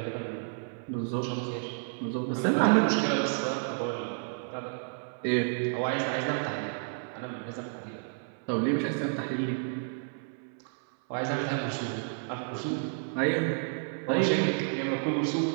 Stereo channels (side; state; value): left; silent; 56 dB below the other